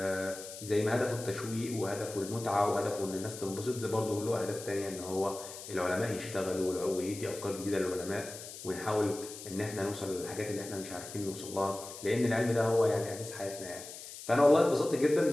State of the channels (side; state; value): left; noise; hiss, 12 dB below the sound